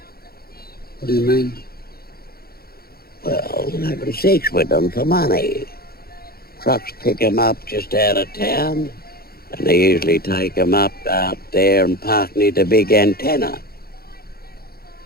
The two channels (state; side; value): late; right; 0.44 ms